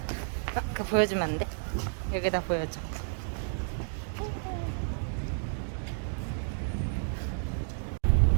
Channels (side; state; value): left; silent; digital silence